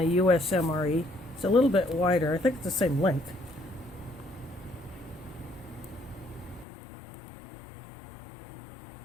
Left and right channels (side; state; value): right; drops out; at 6.7 s